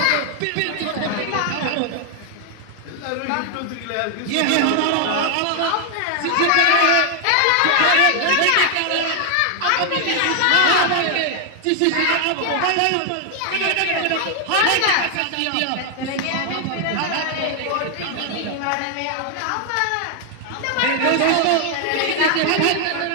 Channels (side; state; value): both; different; correlation 0.00